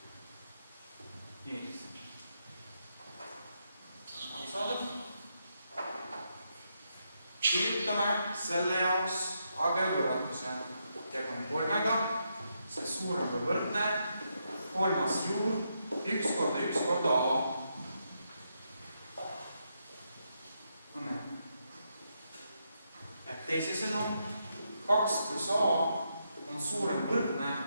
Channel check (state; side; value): inverted; both; correlation -0.81